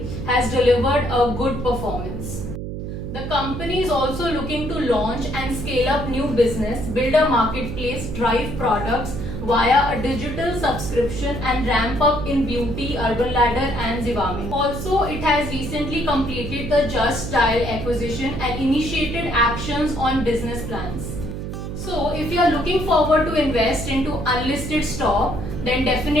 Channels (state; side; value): noise; right; hum, 6 dB below the sound